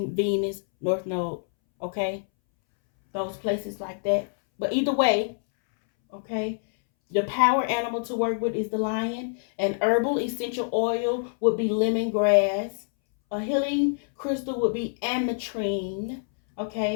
Venus, North Node, okay? Those places like that. But either way, okay, the power animal to work with is the lion. An herbal essential oil would be lemongrass. A healing crystal would be ametrine.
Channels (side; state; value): right; silent; 61 dB below the other